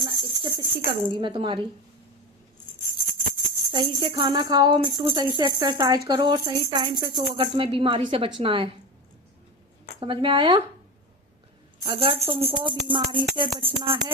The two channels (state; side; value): normal; both; correlation 0.24